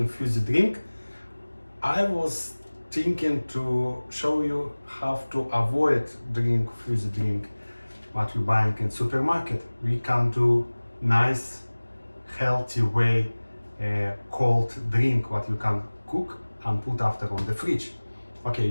fizzy drink, I was thinking to show you how to avoid drink fizzy drink what you're buying in supermarket. We can do nice healthy way cold drink what you can cook and put after on the fridge. Okay,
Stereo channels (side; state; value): both; inverted; correlation -1.00